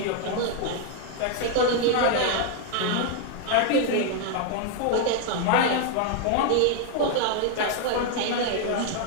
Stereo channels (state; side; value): different; both; correlation 0.00